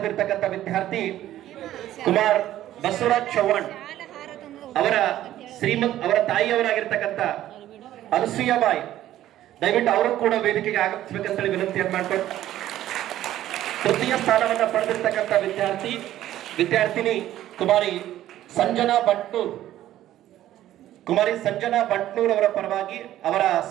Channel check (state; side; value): quieter; left; 13.2 dB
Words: ವಿದ್ಯಾರ್ಥಿ ಕುಮಾರ್ ಬಸವರಾಜ್ ಚೌಹಾಣ್ ಅವರ ತಾಯಿಯವರಾಗಿರ್ತಕ್ಕಂಥ ಅನಸೂಯಾಬಾಯಿ, ದಯವಿಟ್ಟು ಅವರು ಕೂಡ ವೇದಿಕೆಗೆ ಆಗಮಿಸಬೇಕಂತ ವಿನಂತಿಯನ್ನು ಮಾಡ್ಕೊಂಡು, ತೃತೀಯ ಸ್ಥಾನವನ್ನು ಪಡೆದಿರ್ತಕ್ಕಂಥ ವಿದ್ಯಾರ್ಥಿನಿ ಕುಮಾರಿ ಸಂಜನಾ ಭಟ್ನೂರ್ ಅವರ ಪರವಾಗಿ ಅವರ